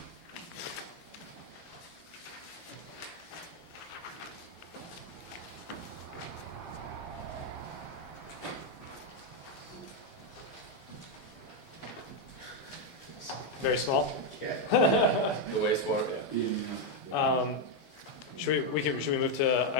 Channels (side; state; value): right; late; 12 ms